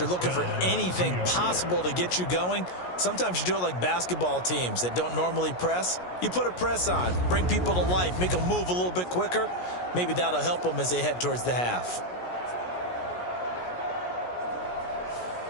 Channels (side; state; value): right; late; 17 ms